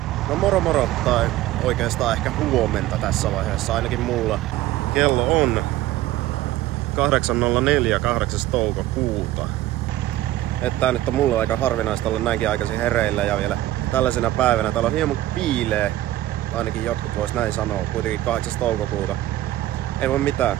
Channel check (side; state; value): left; quieter; 15.0 dB